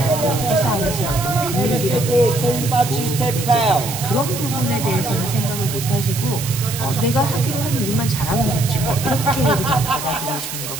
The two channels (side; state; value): right; noise; hiss, 7 dB below the sound